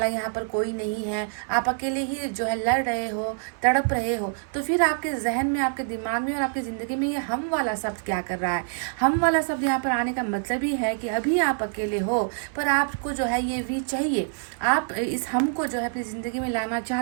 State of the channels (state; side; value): silent; left; 60 dB below the other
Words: यहाँ पर कोई नहीं है, आप अकेले ही जो है लड़ रहे हो, तड़प रहे हो। तो फिर आपके जहन में, आपके दिमाग में और आपकी ज़िंदगी में ये हम वाला शब्द क्या कर रहा है? हम वाला शब्द यहाँ पर आने का मतलब ही है कि अभी आप अकेले हो, पर आपको जो है ये वी चाहिए। आप इस हम को जो है अपनी ज़िंदगी में लाना